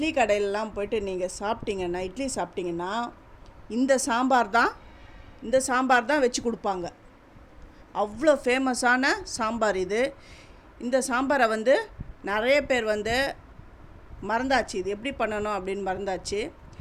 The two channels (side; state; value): both; identical; correlation 1.00